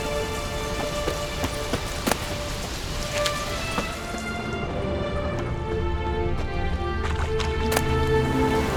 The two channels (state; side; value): identical; both; correlation 1.00